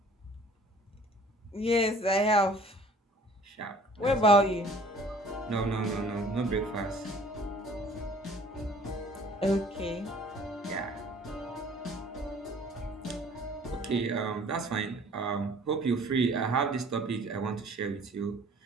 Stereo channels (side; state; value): both; normal; correlation 0.53